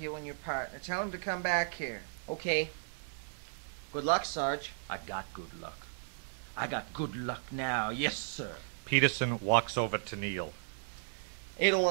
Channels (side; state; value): left; silent; digital silence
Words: and your partner. Tell him to come back here. Okay. Good luck, Sarge. I got good luck. I got good luck now. Yes, sir. Peterson walks over to Neil. Adel